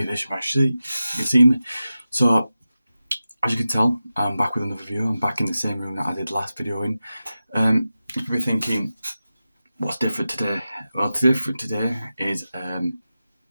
this if you can see me. So, as you can tell, I'm back with another video. I'm back in the same room that I did last video in. You'll be thinking, what's different today? Well, what's different today is, as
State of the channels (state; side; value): inverted; both; correlation -0.93